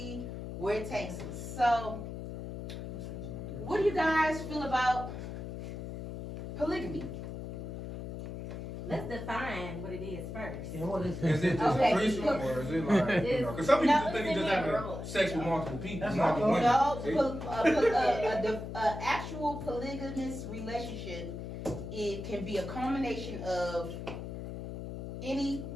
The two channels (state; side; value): noise; left; hum, 7 dB below the sound